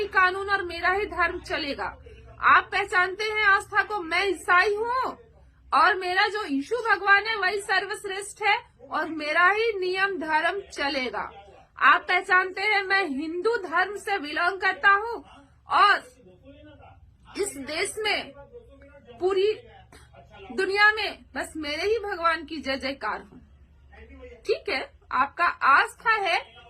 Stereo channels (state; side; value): identical; both; correlation 1.00